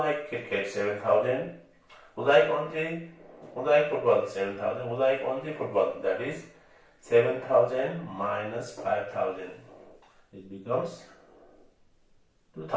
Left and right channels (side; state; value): both; identical; correlation 1.00